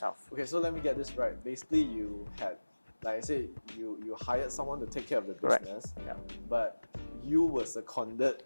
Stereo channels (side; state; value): both; inverted; correlation -1.00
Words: Okay, so let me get this right. Basically, you had like I say, you hired someone to take care of the Correct. business, Yeah. but you were seconded